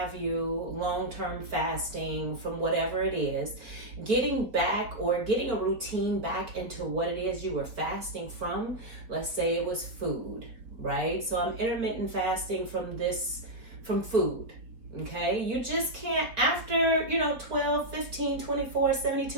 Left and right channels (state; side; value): late; left; 4.2 ms